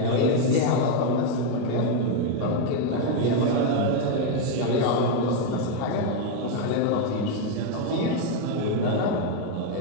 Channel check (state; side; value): different; both; correlation 0.01